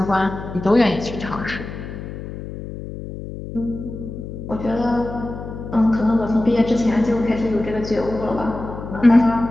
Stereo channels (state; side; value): noise; left; hum, 10 dB below the sound